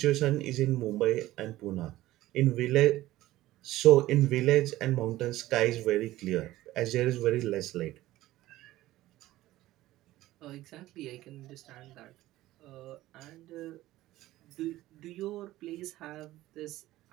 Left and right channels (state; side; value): quieter; left; 16.1 dB